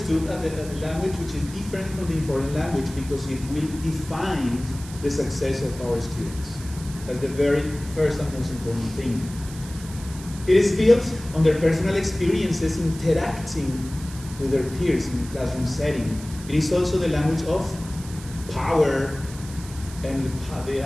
as a language which is different from the informal language because it will define the success of our students. That's the very first and most important thing. It is built on their personal experiences interacting with their peers in the classroom setting. It is also the language of power and the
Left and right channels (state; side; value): noise; right; hiss, 16 dB below the sound